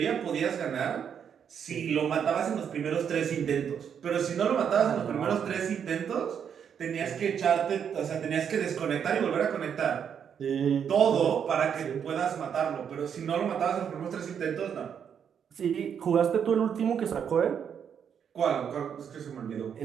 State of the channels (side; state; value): left; quieter; 7.9 dB